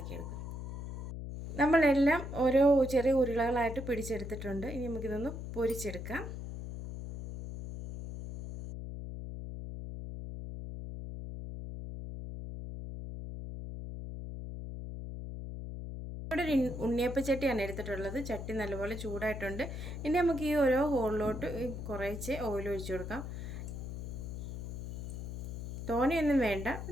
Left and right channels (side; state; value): left; noise; hum, 7 dB below the sound